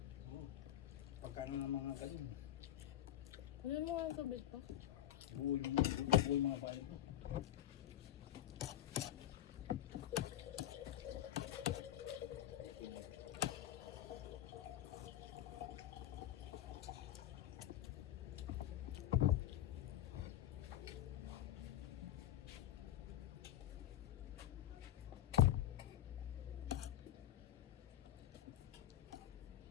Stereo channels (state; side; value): quieter; right; 12.3 dB